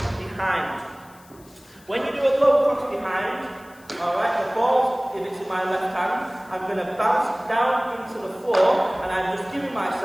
behind. When you do a low cross behind, alright, the ball, if it's in my left hand, I'm going to bounce down into the floor, and I'm just giving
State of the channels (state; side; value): noise; left; hiss, 26 dB below the sound